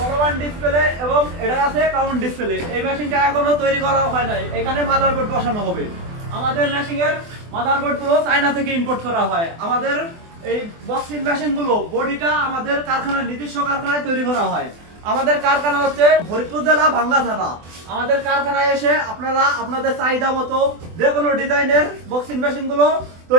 ডিসপ্লে এবং এটা আছে কাউন্ট ডিসপ্লে। এই মেশিনটা এখনো তৈরি করা হয় নাই, এখানে মাদারবোর্ড বসানো হবে। আমাদের মেশিনের মাদারবোর্ড গুলো চায়না থেকে ইম্পোর্ট করা হয়। আমাদের এই বক্সিং মেশিন গুলো বডিটা আমাদের কারখানায়, নিজস্ব কারখানায় তৈরি করা হয়। আমাদের কারখানা হচ্ছে ফরিদপুর জেলা ভাঙ্গা থানা। আমাদের কারখানায় এসে আপনারা আপনাদের চাহিদা মতো যে কোনো ডিজাইনের বক্সিং মেশিন গুলো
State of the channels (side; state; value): left; late; 24 ms